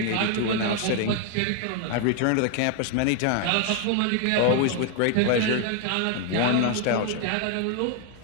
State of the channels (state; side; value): different; both; correlation 0.00